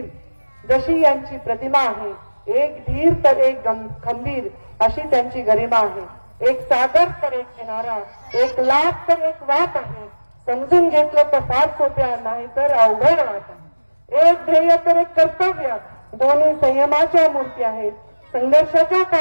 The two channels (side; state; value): both; inverted; correlation -1.00